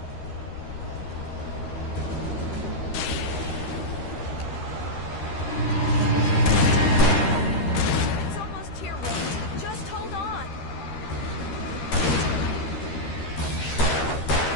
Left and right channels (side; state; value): right; late; 13 ms